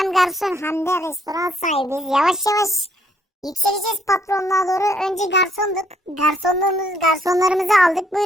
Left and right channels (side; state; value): both; normal; correlation 0.68